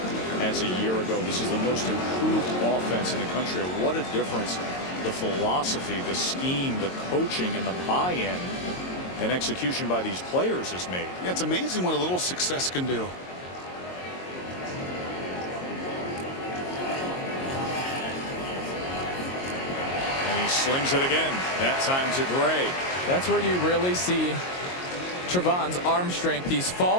as a year ago. This is the most improved offense in the country. What a difference the philosophy, the scheme, the coaching, and the buy-in and execution by these players has made. Yeah, it's amazing what a little success can do. He slings it again, that time to Gray. That's where you really see Trevon's arm strength. He's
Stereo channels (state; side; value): late; right; 22 ms